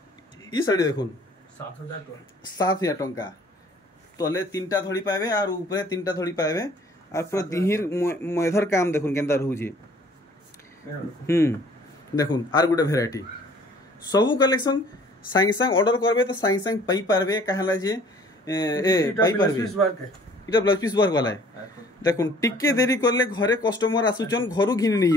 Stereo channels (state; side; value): normal; both; correlation 0.55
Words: ई साड़ी देखुन 7000 टंका तले तीनटा धड़ी पाबे और ऊपर तीनटा धड़ी पाबे और पूरा दिहिर मेधर काम देखुन केंदा रहू जे देखुन आर गुटे वैरायटी सबु कलेक्शन सांग सांग ऑर्डर करबे तो सांग सांग पई पारबे कहला जे पई पारबे इटा ब्लाउज पीस वर्क वाला है देखुन टिके देरी करले घरे कस्टमर आसुचन घरु घिनि नै